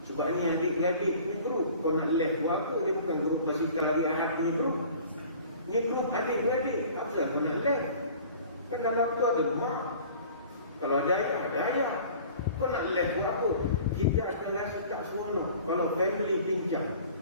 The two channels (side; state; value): both; inverted; correlation -0.46